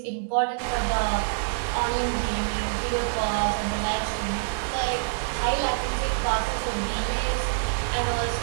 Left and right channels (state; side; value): silent; left; digital silence